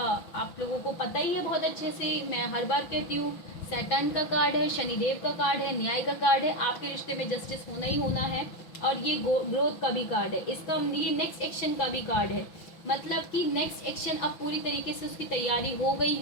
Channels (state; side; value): late; right; 5.9 ms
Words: लोगों को पता ही है बहुत अच्छे से, मैं हर बार कहती हूँ, सैटर्न का कार्ड है, शनिदेव का कार्ड है, न्याय का कार्ड है। आपके रिश्ते में जस्टिस होना ही होना है, और ये ग्रोथ का भी कार्ड है। इसका ये नेक्स्ट एक्शन का भी कार्ड है, मतलब कि नेक्स्ट एक्शन अब पूरी तरीके से उसकी तैयारी हो गई